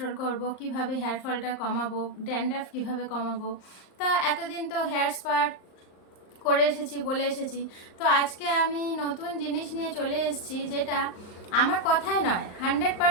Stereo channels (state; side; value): late; right; 38 ms